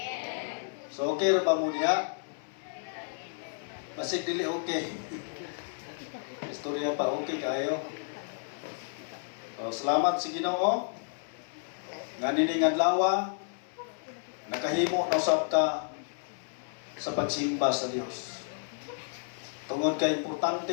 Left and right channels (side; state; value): right; silent; 57 dB below the other